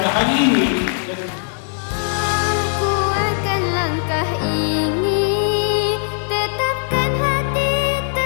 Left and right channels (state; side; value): silent; right; 66 dB below the other